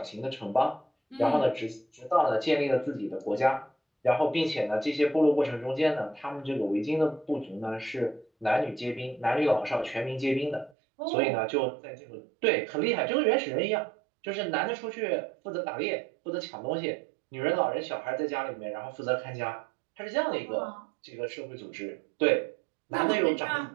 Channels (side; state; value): left; drops out; at 10.8 s